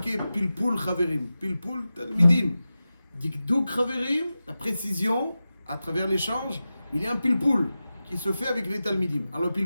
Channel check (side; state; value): both; inverted; correlation -0.94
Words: Pilpul Chaverim, Pilpul Talmidim. Dikduk Chaverim, la précision, à travers l'échange, il y a un pilpoul qui se fait avec les talmidim. Alors le